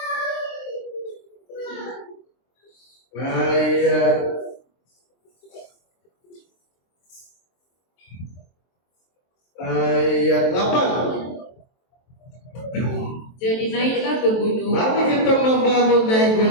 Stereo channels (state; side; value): late; right; 23 ms